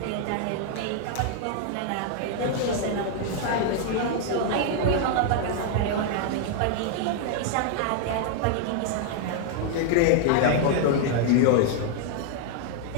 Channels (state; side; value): different; both; correlation 0.00